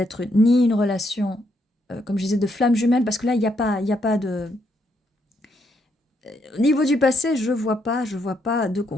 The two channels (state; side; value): normal; both; correlation 0.75